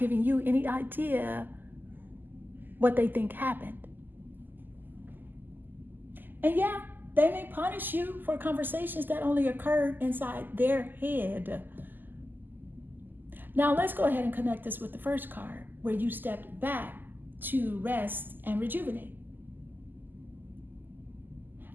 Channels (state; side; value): late; left; 0.090 ms